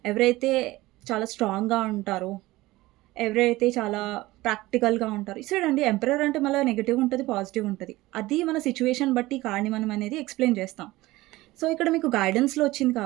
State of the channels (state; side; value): quieter; left; 18.7 dB